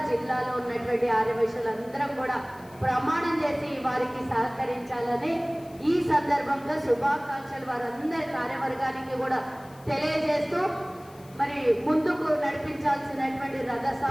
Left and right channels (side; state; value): left; noise; hiss, 26 dB below the sound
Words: జిల్లాలో ఉన్నటువంటి ఆర్యవైశ్యులందరం కూడా ప్రమాణం చేసి వారికి సహకరించాలని ఈ సందర్భంగా శుభాకాంక్షలు వారందరి కార్యవర్గానికి కూడా తెలియజేస్తూ, మరి ముందుకు నడిపించాల్సినటువంటి